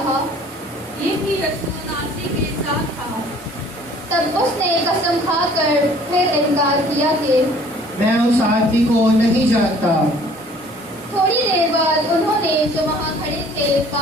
یہ بھی یسوع ناصری کے ساتھ تھا۔ تب اس نے قسم کھا کر پھر انکار کیا کہ میں اس آدمی کو نہیں جانتا۔ تھوڑی دیر بعد انہوں نے جو وہاں کھڑے تھے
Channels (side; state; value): both; normal; correlation 0.54